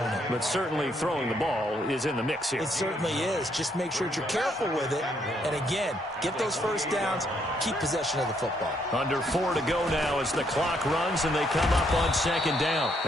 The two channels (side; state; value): both; normal; correlation 0.72